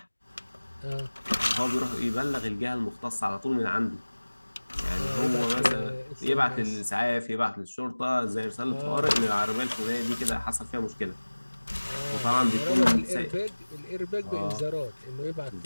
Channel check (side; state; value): both; inverted; correlation -1.00